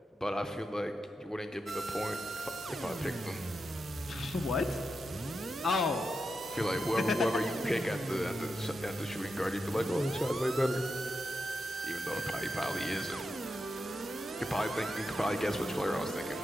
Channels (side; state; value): both; normal; correlation 0.88